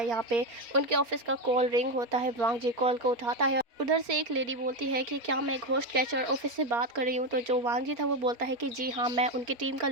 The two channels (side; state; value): left; late; 4.3 ms